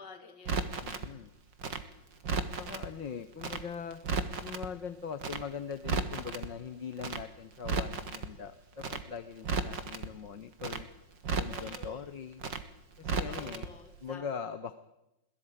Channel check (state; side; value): late; left; 5.5 ms